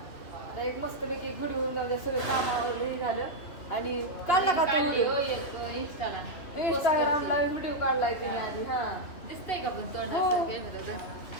एक मस्तपैकी घडवून जाऊ द्या. सगळं कामावरही झालं. आणि काढला का तो व्हिडिओ? इंस्टाग्रामला व्हिडिओ काढलाय तिने आधी. हा, दिसतंय का पण तोंड? हो.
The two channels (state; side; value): late; right; 3.0 ms